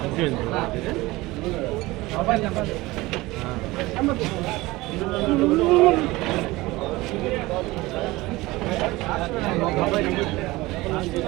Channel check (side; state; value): left; quieter; 20.2 dB